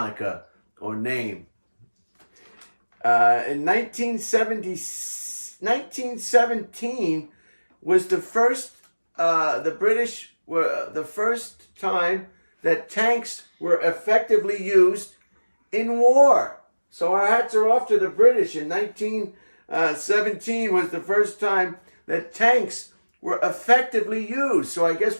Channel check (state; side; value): inverted; both; correlation -1.00